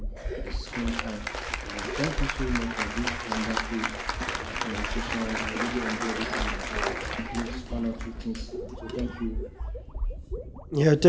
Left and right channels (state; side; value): identical; both; correlation 1.00